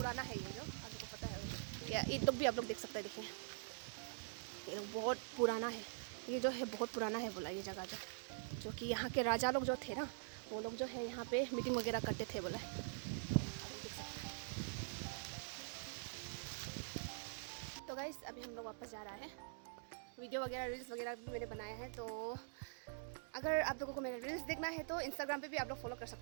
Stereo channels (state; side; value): silent; left; digital silence